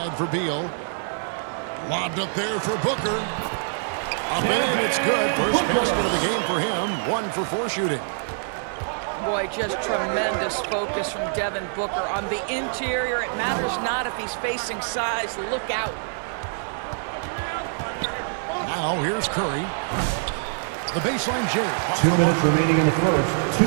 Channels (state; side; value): silent; left; digital silence